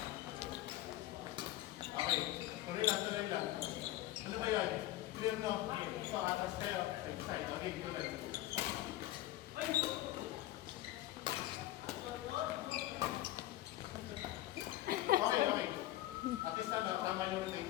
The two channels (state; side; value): quieter; right; 15.4 dB